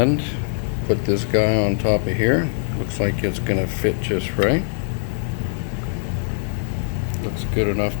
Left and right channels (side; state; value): right; silent; 64 dB below the other